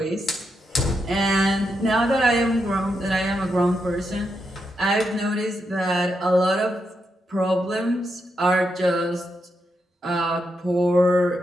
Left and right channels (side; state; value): both; normal; correlation 0.83